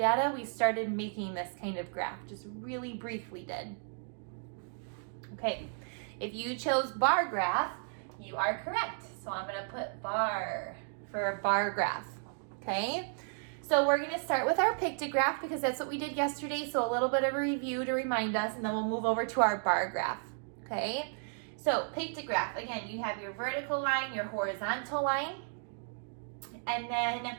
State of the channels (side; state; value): left; silent; 55 dB below the other